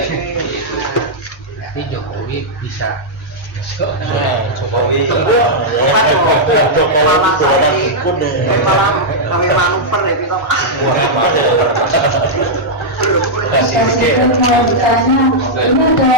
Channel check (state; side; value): normal; both; correlation -0.07